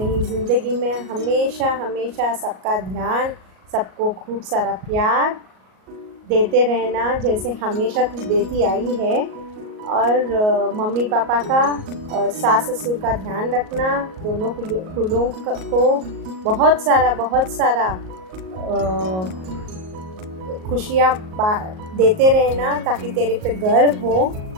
ज़िंदगी में. हमेशा सबका ध्यान, सबको खूब सारा प्यार देते रहना जैसे हमेशा तू देती आई है. और मम्मी पापा का और सास ससुर का ध्यान रखना. दोनों कुलों को बहुत सारा खुशियाँ देते रहना ताकि तेरे पे गर्व हो.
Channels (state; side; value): late; left; 38 ms